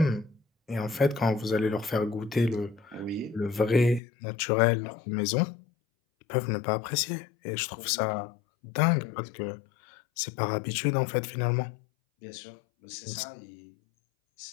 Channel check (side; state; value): right; drops out; at 4.0 s